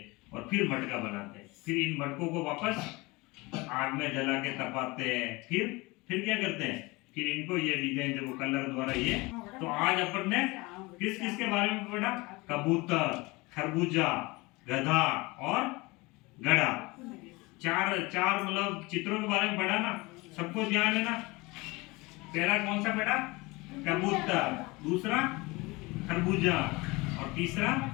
और फिर मटका बनाते हैं। फिर इन मटकों को वापस आग में जला के तपाते हैं, फिर क्या करते हैं, फिर इनको ये डिजाइन देखो कलर द्वारा ये। तो आज अपन ने किस किस के बारे में पढ़ा, कबूतर, खरबूजा, गधा और घड़ा, चार मतलब चित्रों के बारे में पढ़ा ना। सबको ध्यान है ना। पहला कौन सा बेटा, कबूतर, दूसरा खरबूजा, और तीसरा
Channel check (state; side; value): quieter; right; 23.7 dB